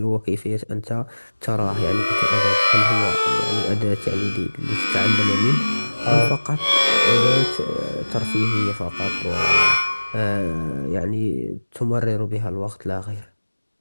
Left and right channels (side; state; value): both; inverted; correlation -1.00